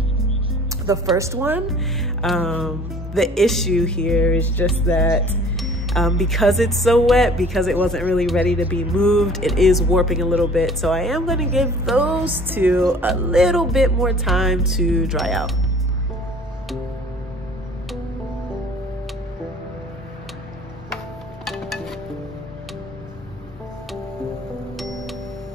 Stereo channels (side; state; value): both; normal; correlation 0.50